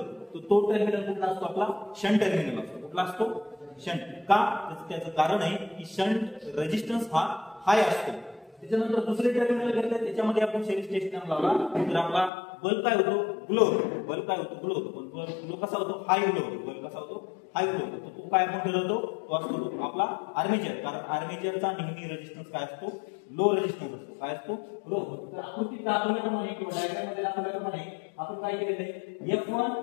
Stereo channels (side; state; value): right; drops out; at 12.3 s